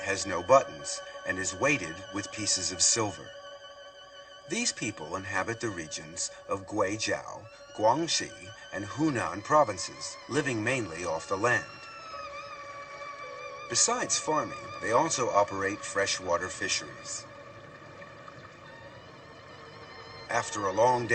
no buttons and is weighted with pieces of silver. These people inhabit the regions of Guizhou, Guangxi, and Hunan provinces, living mainly off the land. Besides farming, they also operate freshwater fisheries. After a long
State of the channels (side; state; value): both; identical; correlation 1.00